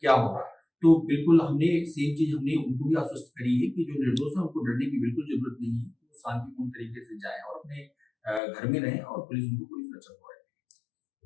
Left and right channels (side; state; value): right; drops out; at 8.4 s